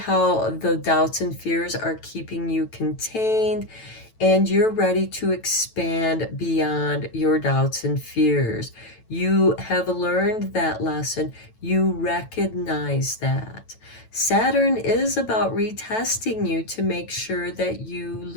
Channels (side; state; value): right; late; 9.1 ms